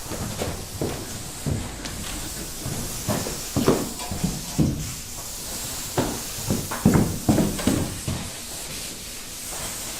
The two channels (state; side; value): identical; both; correlation 1.00